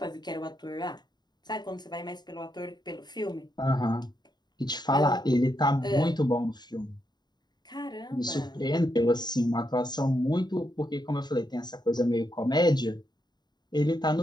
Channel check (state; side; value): late; right; 0.20 ms